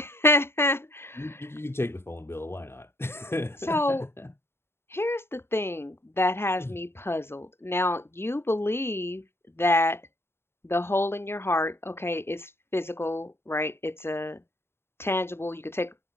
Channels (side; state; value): right; late; 0.12 ms